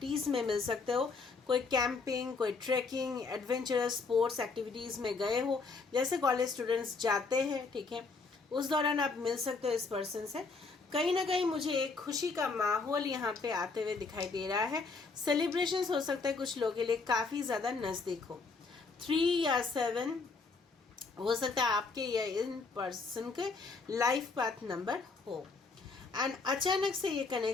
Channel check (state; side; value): quieter; right; 4.3 dB